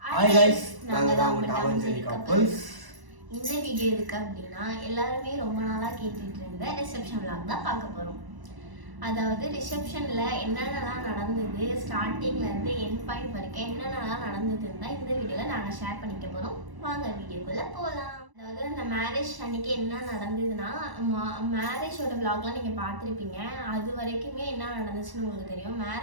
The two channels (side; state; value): left; late; 1.0 ms